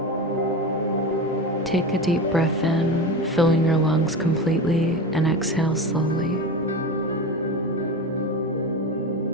Take a deep breath in, filling your lungs completely, and exhale slowly.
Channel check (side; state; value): both; normal; correlation 0.25